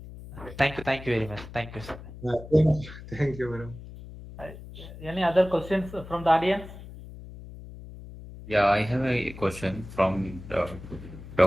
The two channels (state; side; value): noise; left; hum, 14 dB below the sound